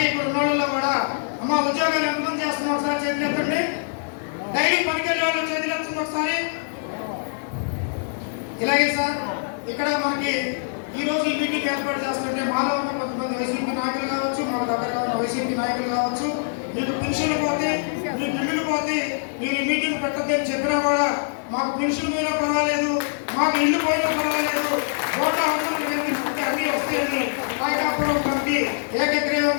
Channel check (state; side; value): silent; right; 63 dB below the other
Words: ఇప్పుడు ఉన్న వాళ్ళలో కూడా అమ్మ ఉద్యోగాలు ఎంతమంది చేస్తున్నాం ఒకసారి చేతులు ఎత్తండి. డైలీ పనికెళ్ళే వాళ్ళు చేతులు ఎత్తుంది ఒకసారి. ఇలాగే సార్ ఇక్కడ మనకి ఈ రోజు ఈ మీటింగ్ ఏర్పాటు చేస్తుంటే మాలో ఉన్న కొంతమంది వైసీపీ నాయకులు కావచ్చు, మాకు దగ్గరగా ఉన్న వైసీపీ నాయకులు కావచ్చు, మీకు పెన్షన్లు పోతే, మీ బిల్లులు పోతే మీరు ఈ మీటింగ్ పెట్టద్దని చెప్పినా కూడా మాకు పెన్షన్ పోయినా పర్వాలేదు, మాకు ఇల్లు పోయినా పర్వాలేదు, ఓట్ల అన్నీ వస్తాయని నాయకాపురం కమిటీ